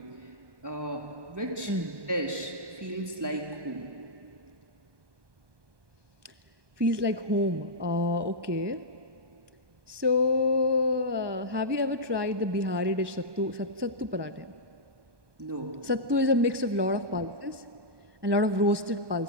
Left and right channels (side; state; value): left; late; 1.2 ms